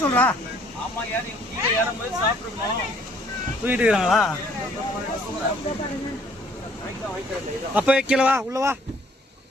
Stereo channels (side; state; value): both; normal; correlation 0.61